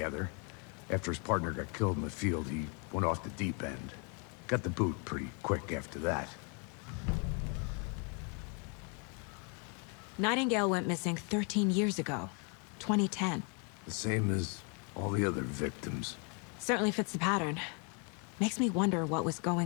After his partner got killed in the field, he went off the deep end. Got the boot pretty quick after that. Nightingale went missing 13 years ago, 2010. The same as all the other victims. Certainly fits the pattern. Makes me wonder what was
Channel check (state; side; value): quieter; right; 36.1 dB